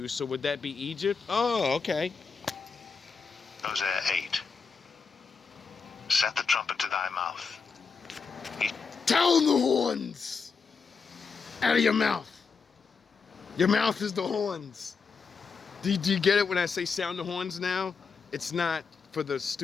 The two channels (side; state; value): right; quieter; 5.3 dB